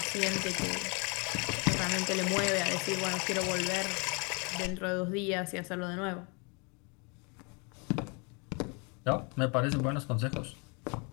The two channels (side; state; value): right; quieter; 32.5 dB